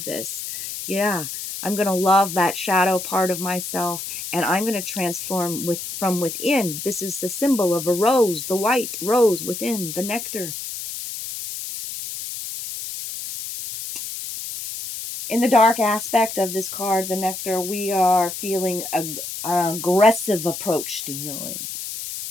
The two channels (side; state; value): left; noise; hiss, 7 dB below the sound